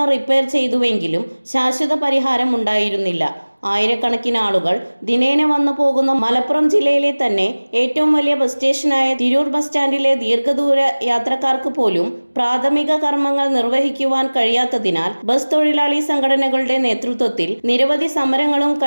റിപ്പയർ ചെയ്തുവെങ്കിലും ശാശ്വത പരിഹാരം ഉണ്ടായിരുന്നില്ല. ആയിരക്കണക്കിന് ആളുകൾ ദിനേന വന്നു പോകുന്ന മലപ്പുറം ജില്ലയിലെ തന്നെ ഏറ്റവും വലിയ ബസ് സ്റ്റേഷനായ തിരൂർ ബസ് സ്റ്റാൻഡിലെ ദീർഘദൂര യാത്രക്കാർക്ക് പോലും പ്രാഥമിക കർമ്മങ്ങൾ നിർവഹിക്കുവാൻ കഴിയാത്തതിനാൽ ബസ് തൊഴിലാളി സംഘടനകളുടെ നേതൃത്വത്തിൽ നിരവധി സമരങ്ങളും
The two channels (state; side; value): inverted; both; correlation -1.00